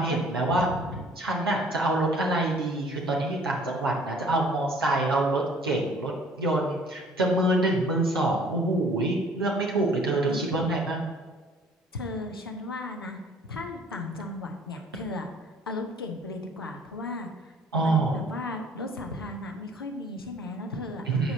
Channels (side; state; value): both; normal; correlation 0.54